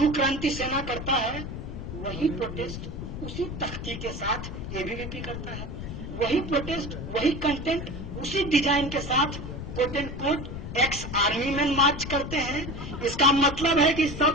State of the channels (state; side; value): noise; left; rumble, 7 dB below the sound